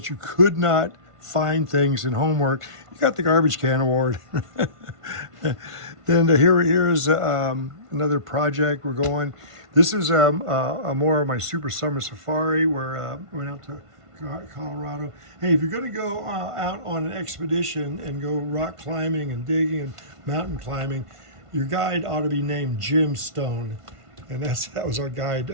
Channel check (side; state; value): left; late; 1.5 ms